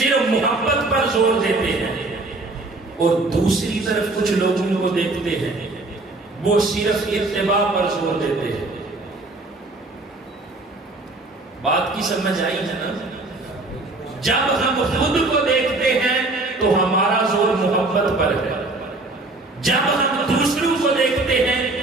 محبت پر زور دیتے ہیں. اور دوسری طرف کچھ لوگوں کو دیکھتے ہیں وہ صرف اتباع پر زور دیتے ہیں. بات کی سمجھ آئی ہے نا؟ جب ہم خود کو دیکھتے ہیں تو ہمارا زور محبت پر ہے. جب ہم دوسروں کو دیکھتے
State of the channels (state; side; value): quieter; left; 3.0 dB